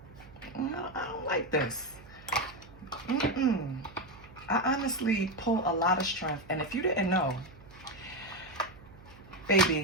I don't like this. I honestly pull a lot of strength. And if you didn't know,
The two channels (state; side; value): noise; right; hum, 21 dB below the sound